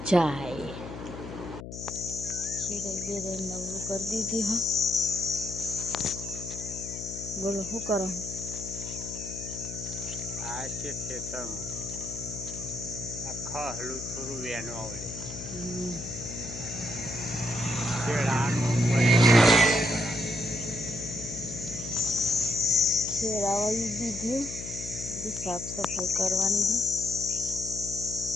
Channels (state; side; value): noise; left; hum, 10 dB below the sound